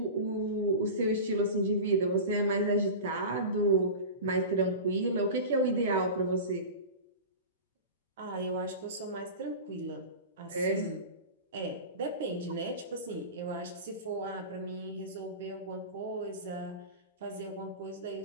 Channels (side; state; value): both; inverted; correlation -0.30